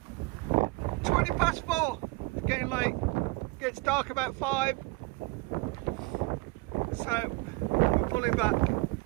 4:20. It's getting late. Gets dark about 5. So we're pulling back.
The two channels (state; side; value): quieter; left; 24.4 dB